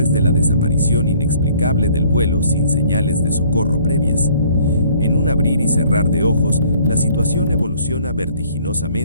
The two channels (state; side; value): inverted; both; correlation -0.58